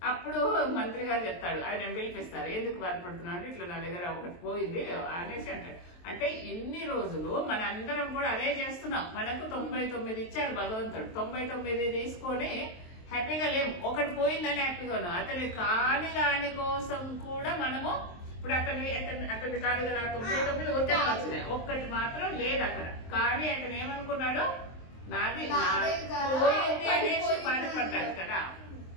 అప్పుడు మంత్రి గారు చెప్తాడు, ఆయన పిలిపిస్తారు, ఎందుకు బాధపడుతున్నావు అంటే, ఇట్లా నా దగ్గర ఒకటి పోయింది అనేసి అంటాడు. అంటే ఇన్ని రోజులు మన అందరం కూడా అదే చేస్తున్నాం, మనకు 99 ఇచ్చారు భగవంతుడు, 99 తీసుకొని హ్యాపీగా లేము, ఒకటి పోయిందని హ్యాపీగా ఉన్నాం. అతని కాని దాని కోసం కూడా మనము, ఇప్పుడు అతని కాదు కదా 99 ఉత్తరం వచ్చినాయి, ఒక్కటి మాత్రం లేదు అక్కడ. కానీ అతను ఏమనుకున్నాడు, నాది పోయింది అనేసి బాధపడ్డాడు కదా.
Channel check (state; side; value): late; right; 23 ms